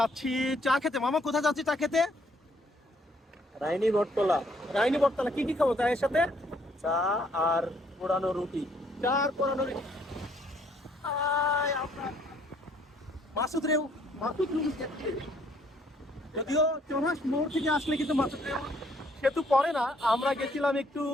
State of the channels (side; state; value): both; normal; correlation 0.65